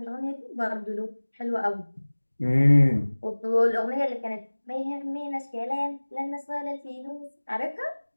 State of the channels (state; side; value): inverted; both; correlation -1.00